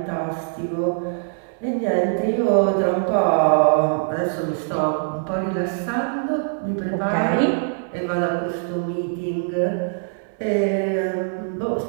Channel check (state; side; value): silent; left; digital silence